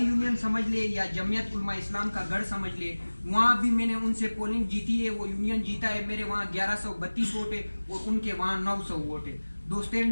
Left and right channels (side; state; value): both; inverted; correlation -1.00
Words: سمجھ لے یا جمعیت علماء اسلام کا گڑھ سمجھ لے، وہاں بھی میں نے ان سے پولنگ جیتی ہے، وہ یونین جیتا ہے۔ میرے وہاں 1132 ووٹ ہے اور ان کے وہاں 900 ووٹ ہے۔ دوستین